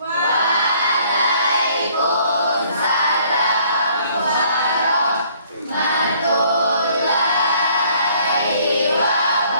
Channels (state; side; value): inverted; both; correlation -0.60